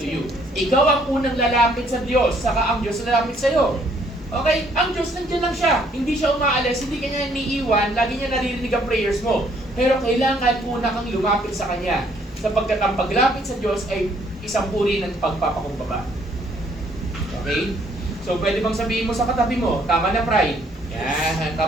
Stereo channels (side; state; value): both; normal; correlation 0.65